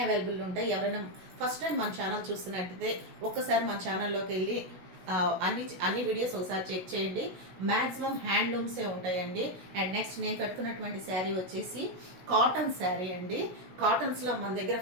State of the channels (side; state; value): left; late; 16 ms